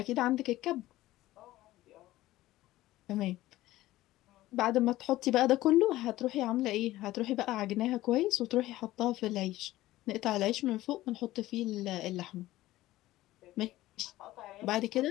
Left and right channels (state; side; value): quieter; right; 16.2 dB